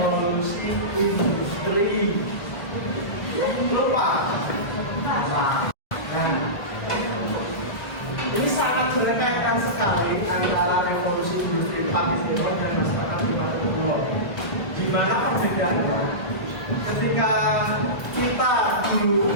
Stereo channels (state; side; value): late; right; 1.3 ms